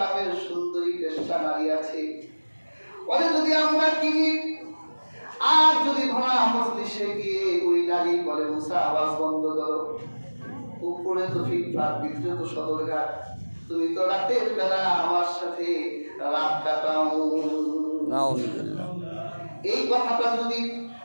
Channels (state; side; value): inverted; both; correlation -1.00